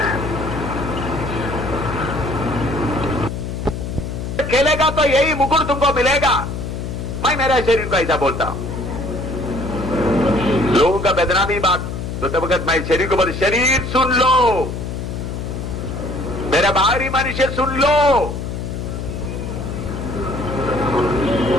खेलेगा तो यही मुकुट तुमको मिलेगा। मैं मेरा शरीर को ऐसा बोलता हूं, लोगों का बदनामी बात तो तब वक्त मैं शरीर को बोलता, शरीर सुन लो, मेरा बाहरी मनुष्य सुन लो,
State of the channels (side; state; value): left; noise; hum, 5 dB below the sound